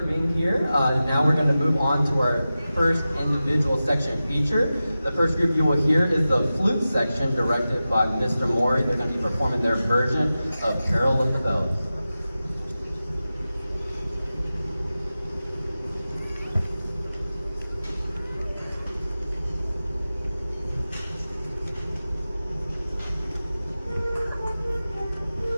being here. Now we're going to move on to our first individual section feature. The first group you will hear is the flute section directed by Mr. Mori. They're going to be performing their version of Carol of the Bells.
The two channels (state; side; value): inverted; both; correlation -0.94